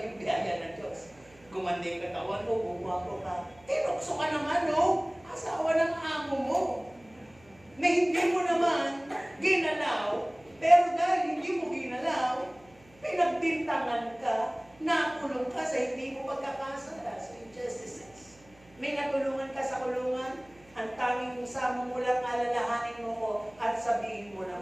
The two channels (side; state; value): right; noise; hum, 28 dB below the sound